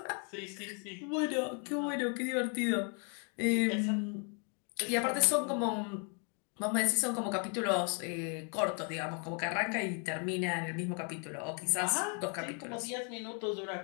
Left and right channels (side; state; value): right; quieter; 38.5 dB